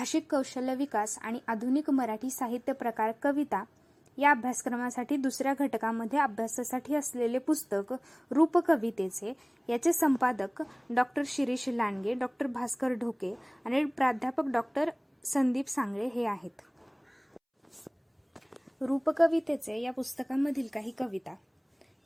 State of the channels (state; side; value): identical; both; correlation 1.00